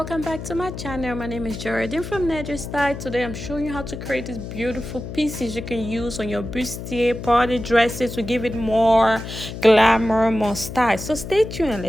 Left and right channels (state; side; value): noise; left; hum, 9 dB below the sound